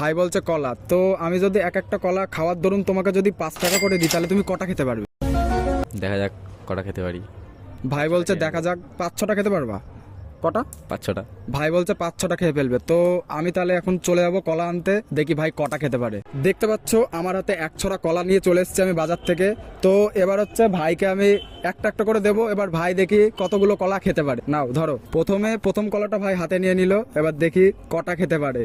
বলছে কলা। তো আমি যদি এক একটা কলা খাওয়ার দরুন তোমাকে যদি 5 টাকা করে দিই তাহলে তুমি কটা খেতে পারবে? দেখা যাক কটা খেতে পারি। ভাই বলছে দেখা যাক 5-6টা খেতে পারবা। কটা? 5-6টা। ভাই বলছে 5-6টা খেয়ে ফেলবে। তো আমি তাহলে এখন চলে যাবো কলা আনতে, দেখি ভাই কটা খেতে পারে। দেখতে পাচ্ছ আমার হাতে 1 ছড়া কলা নিয়ে চলে এসেছি আমি বাজার থেকে। তো এবার হচ্ছে ভাইকে আমি একটা একটা করে দেবো। এবার ভাই দেখি কতগুলো কলা খেতে পারে। নাও ধরো। প্রথম কলাটা ভাই হাতে নিয়ে নিল। এবার দেখি কটা খেতে পারে।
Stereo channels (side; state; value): both; identical; correlation 1.00